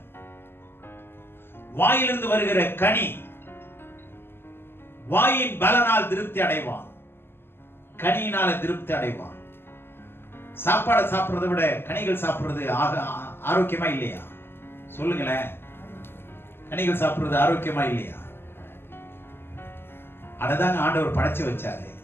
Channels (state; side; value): late; right; 0.11 ms